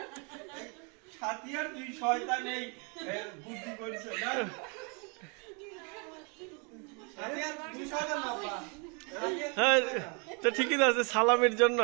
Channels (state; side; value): quieter; left; 34.1 dB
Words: ছাতিয়ার দুই শয়তান এই বুদ্ধি করেছে না ছাতিয়ার দুই শয়তান বাবা হ্যাঁ তো ঠিকই আছে সালামের জন্য।